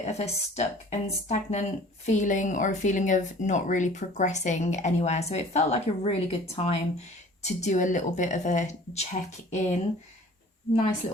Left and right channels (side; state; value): both; normal; correlation 0.48